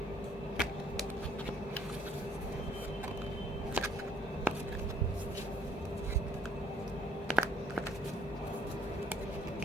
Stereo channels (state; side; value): normal; both; correlation 0.63